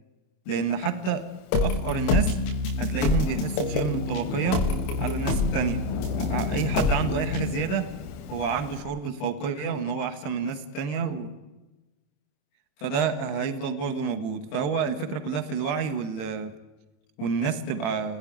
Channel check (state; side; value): late; right; 27 ms